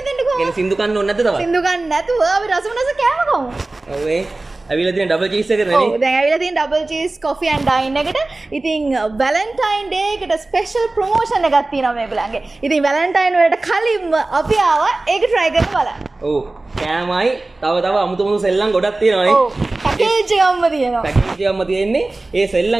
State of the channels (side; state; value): left; quieter; 3.0 dB